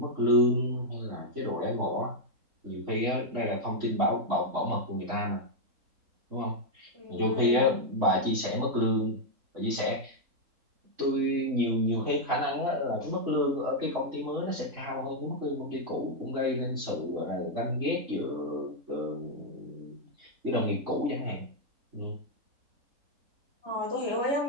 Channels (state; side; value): late; left; 3.5 ms